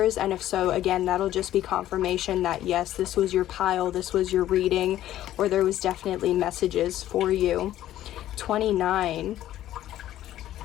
and if so, again, that'll just be confirmation that yes, this was your pile, this was your reading, or there was definitely messages for you. 29.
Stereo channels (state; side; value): quieter; right; 13.1 dB